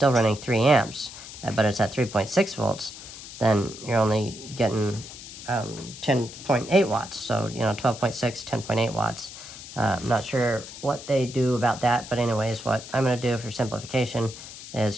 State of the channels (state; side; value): noise; left; hiss, 14 dB below the sound